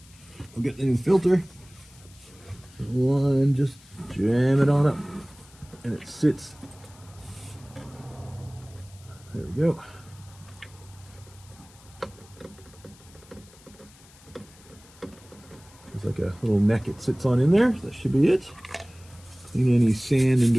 we'll get the new filter. One, just jam it on up and it sits. There we go. There's like a little neck it sits on in there. That should be it. Clean any sand and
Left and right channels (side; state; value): left; noise; hiss, 25 dB below the sound